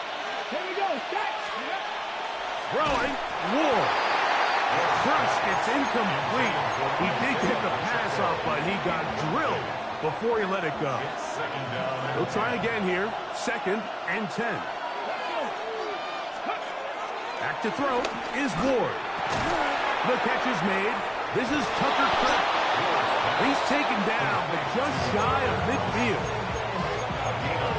Here we go, set. Throwing, Ward. Crushed, it's incomplete. He did get the pass off, but he got drilled before he let it go. He'll try again here. 2nd and 10. Back to throw is Ward. The catch is made. This is Tucker Kraft. He's taken down, but just shy of midfield.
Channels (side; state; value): both; identical; correlation 1.00